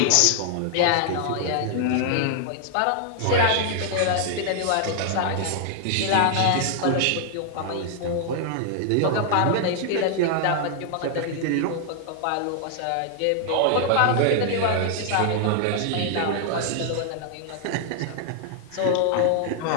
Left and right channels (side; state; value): both; different; correlation 0.00